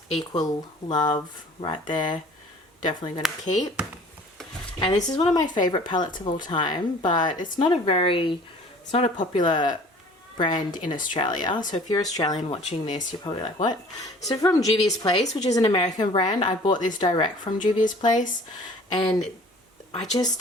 equal love right there. Definitely going to keep. And this is one of my favorite palettes of all time, but it's not a popular brand in Australia. So if you're Australian watching this, you're probably like, what? So from Juvia's Place, which is an American brand, I bought this direct from Juvia's Place, and I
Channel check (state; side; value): normal; both; correlation 0.49